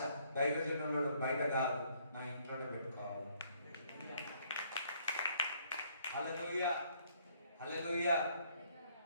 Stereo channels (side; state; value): both; inverted; correlation -0.66